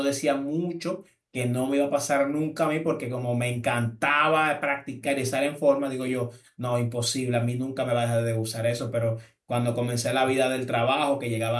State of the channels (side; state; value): both; identical; correlation 1.00